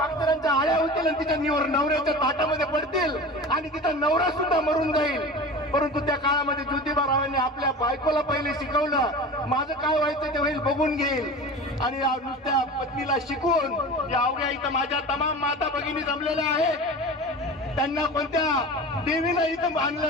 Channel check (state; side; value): normal; both; correlation 0.34